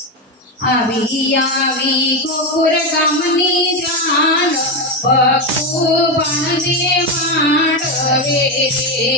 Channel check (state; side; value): normal; both; correlation 0.11